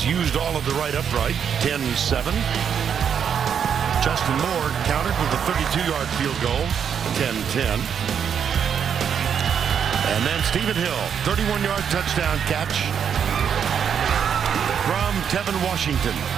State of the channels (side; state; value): left; quieter; 7.8 dB